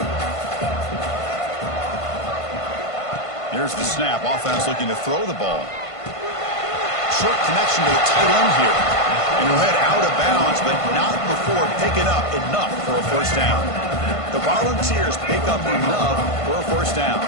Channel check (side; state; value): right; late; 1.5 ms